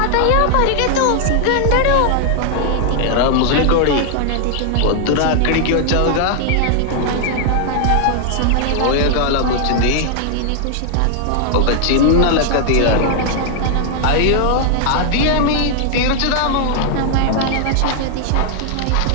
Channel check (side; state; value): both; different; correlation 0.00